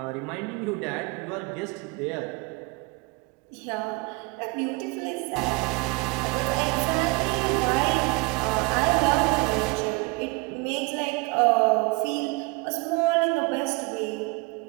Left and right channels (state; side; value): quieter; left; 27.1 dB